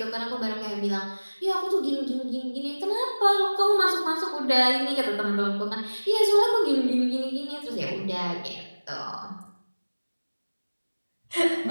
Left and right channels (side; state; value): both; inverted; correlation -1.00